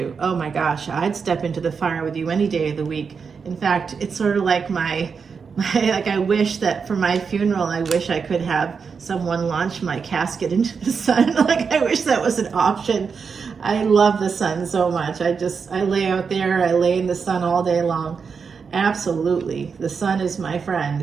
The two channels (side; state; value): left; quieter; 5.7 dB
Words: Oh my gosh, I'd step into the fire with you any day of the week. In fact, it's sort of like my Like, I wish that for my funeral, I wish I could have someone launch my casket into the sun. Like, I wish that was an option. I love the sun so much. I lay out there, I lay in the sun all day long. Absolutely. The sun is my friend.